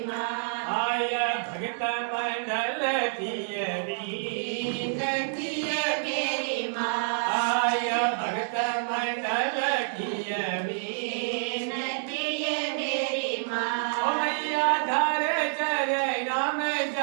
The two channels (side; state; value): left; silent; digital silence